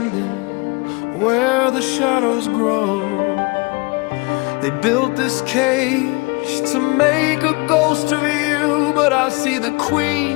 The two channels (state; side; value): quieter; right; 27.9 dB